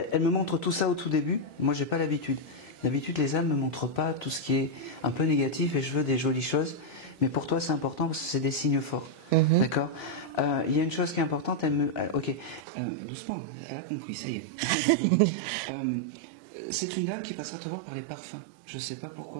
me montre tout ça au tout début. Moi, j'ai pas l'habitude. D'habitude, les âmes me montrent pas tout ce qui est un peu négatif et je veux des jolies choses. Mais pour toi, c'est important parce que c'est des signes forts. D'accord. Il y a une chose qui est importante. Ok. Doucement. Elle a compris. Ça y est. C'est une dame qui passera te voir par les parfums. Je sais pas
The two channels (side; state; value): left; drops out; at 12.6 s